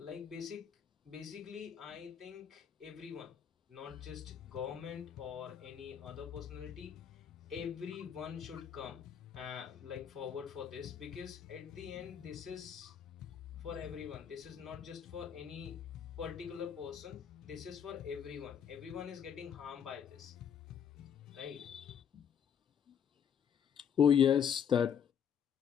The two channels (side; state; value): right; quieter; 8.1 dB